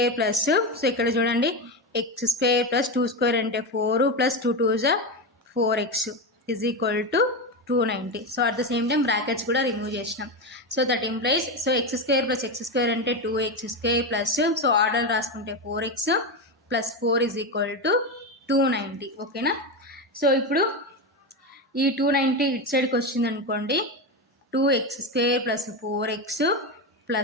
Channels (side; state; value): both; normal; correlation 0.15